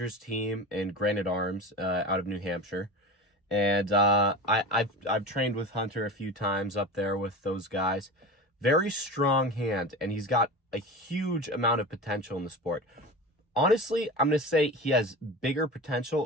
team and Granite Arms out of New Hampshire, and I've trained with Hunter a few times up there with those guys. Very strong hand, and he's got a huge amount of potential in the sport. Honestly, I'm gonna say he has bigger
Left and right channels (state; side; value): normal; both; correlation 0.30